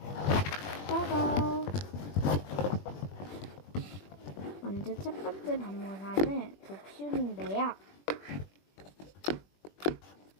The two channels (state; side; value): late; right; 21 ms